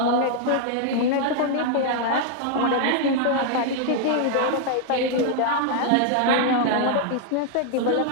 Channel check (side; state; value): both; different; correlation 0.00